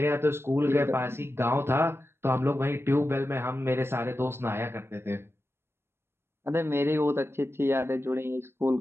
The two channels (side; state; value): left; late; 0.12 ms